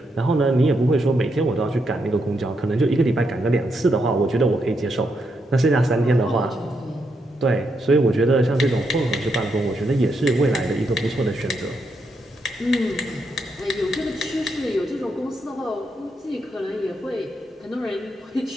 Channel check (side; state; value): both; normal; correlation 0.80